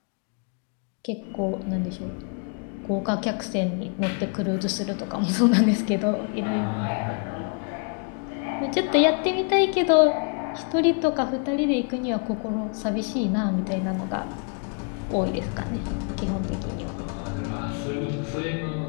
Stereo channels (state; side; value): quieter; right; 39.1 dB